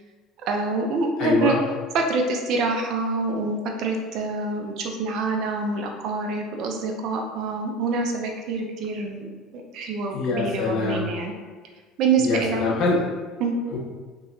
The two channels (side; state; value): both; normal; correlation 0.31